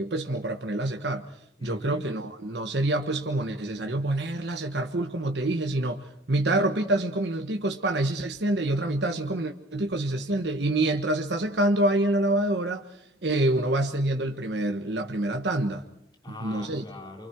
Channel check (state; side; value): normal; both; correlation 0.50